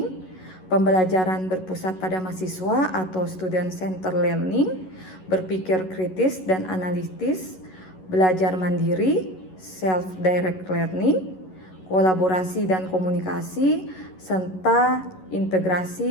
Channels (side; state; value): right; late; 11 ms